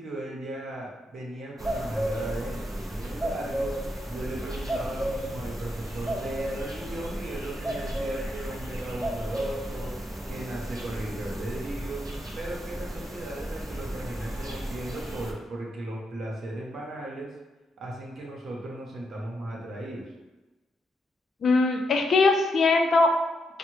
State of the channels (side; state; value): both; normal; correlation 0.81